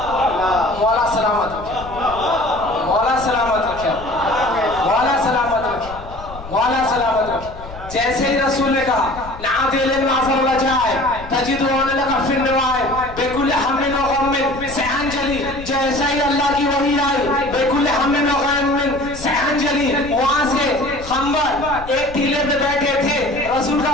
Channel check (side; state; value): left; noise; rumble, 14 dB below the sound